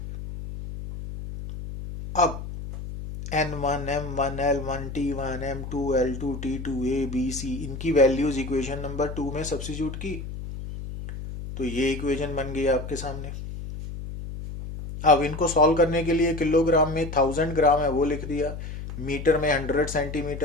अब N1, M1, L1, T1, M2, L2, T2, A, B, C, इनकी वैल्यूज इक्वेशन नंबर 2 में सब्स्टिट्यूट की, तो ये इक्वेशन बन गई आपके सामने। अब इनको सॉल्व करने के लिए किलोग्राम में 1000 ग्राम है वो लिख दिया, मीटर में 100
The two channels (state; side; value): noise; left; hum, 8 dB below the sound